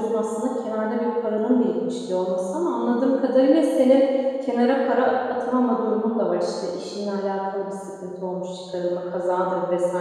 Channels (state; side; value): identical; both; correlation 1.00